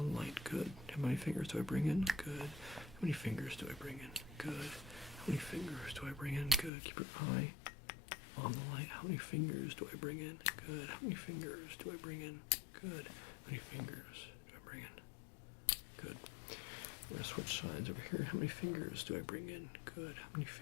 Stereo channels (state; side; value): drops out; right; at 6.7 s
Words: light. Good. How many fingers do I bring in? Good. How many fingers do I bring in? Good. How many fingers do I bring in? Good. Keep your eye on the light. How many fingers do I bring in? Good. How many fingers do I bring in? Good. How many fingers do I bring in? Good. We're going to switch sides over here. How many fingers do I bring in? Good. How many